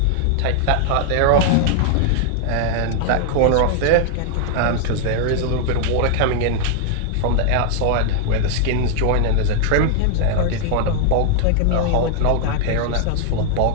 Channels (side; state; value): both; different; correlation 0.00